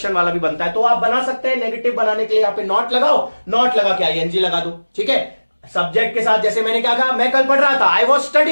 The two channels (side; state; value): both; inverted; correlation -1.00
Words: वाला भी बनता है, तो आप बना सकते हैं। नेगेटिव बनाने के लिए यहां पे नॉट लगाओ, नॉट लगा के आईएनजी लगा दो, ठीक है। सब्जेक्ट के साथ, जैसे मैंने क्या कहा, मैं कल पढ़ रहा था, आई वॉज